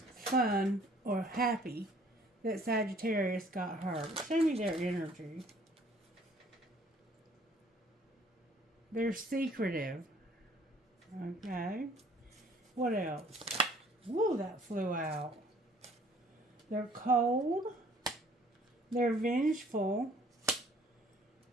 or happy that Sagittarius got hurt. Show me their energy. They're secretive. Okay. What else? Woo, that flew out. They're cold. They're vengeful.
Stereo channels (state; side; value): normal; both; correlation 0.57